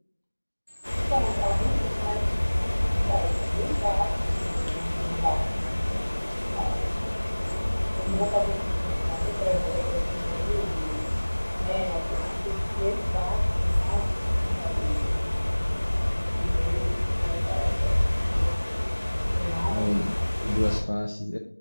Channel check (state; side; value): inverted; both; correlation -1.00